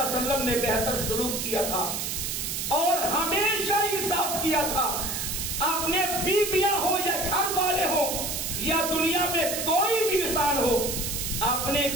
اللہ علیہ وسلم نے بہتر سلوک کیا تھا اور ہمیشہ انصاف کیا تھا۔ اپنے بیویاں ہو یا گھر والے ہو یا دنیا میں کوئی بھی انسان ہو، آپ نے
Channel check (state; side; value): noise; right; hiss, 2 dB below the sound